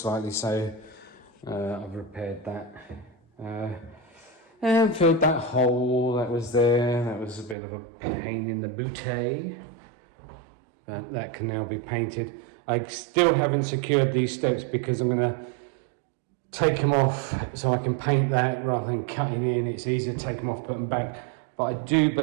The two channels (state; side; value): drops out; left; at 7.6 s